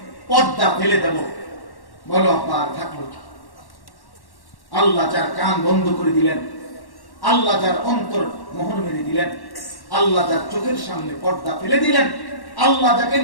পর্দা ফেলে দেব। বলো আব্বা, আর থাকলো কি? আল্লাহ যার কান বন্ধ করে দিলেন, আল্লাহ যার অন্তর মোহর মেরে দিলেন, আল্লাহ যার চোখের সামনে পর্দা ফেলে দিলেন, আল্লাহ যাকে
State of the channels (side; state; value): right; late; 1.1 ms